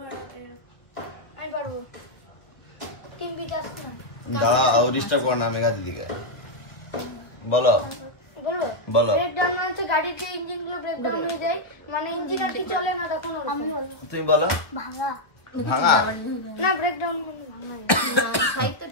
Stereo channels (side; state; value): right; late; 1.1 ms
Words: আমি পারবো। টিম বিকাশ না। দাঁড়াও, ডিস্টার্ব করো না মেঘা দিদিকে। বলো বলো। ব্রেকডাউন মানে হচ্ছে গাড়ির যে ইঞ্জিন গুলো ব্রেকডাউন হয়ে যায়, মানে ইঞ্জিন আর কি চলে না তখন। আমি বলবো তুমি বলো। ভাঙা না, ব্রেকডাউন মানে ভাঙা। সাহিত্য